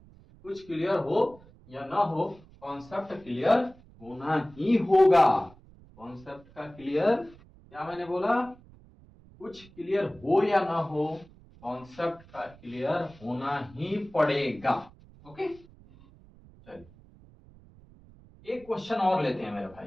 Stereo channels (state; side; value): noise; right; rumble, 24 dB below the sound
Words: कुछ क्लियर हो या ना हो, कॉन्सेप्ट क्लियर होना ही होगा। कॉन्सेप्ट का क्लियर, क्या मैंने बोला, कुछ क्लियर हो या ना हो, कॉन्सेप्ट का क्लियर होना ही पड़ेगा। ओके, चलिए एक क्वेश्चन और लेते हैं मेरे